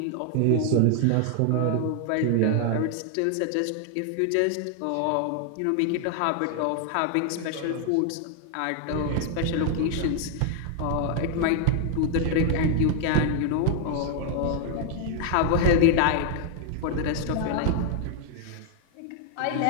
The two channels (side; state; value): both; different; correlation 0.00